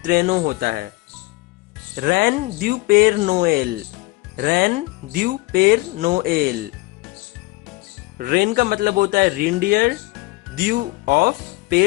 ट्रेनो होता है। रैन ड्यू पेर नोएल, रैन ड्यू पेर नोएल। रेन का मतलब होता है रेनडियर, ड्यू ऑफ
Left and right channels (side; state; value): right; quieter; 22.0 dB